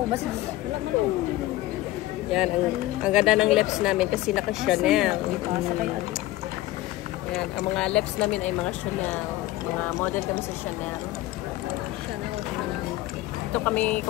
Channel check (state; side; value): quieter; right; 17.0 dB